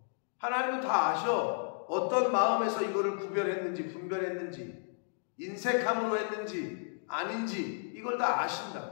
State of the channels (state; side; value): silent; right; digital silence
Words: 하나님은 다 아셔. 어떤 마음에서 이거를 구별했는지, 분별했는지, 인색함으로 했는지 아닌지 이걸 다